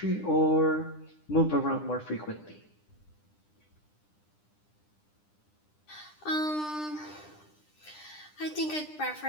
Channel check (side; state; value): right; late; 9.9 ms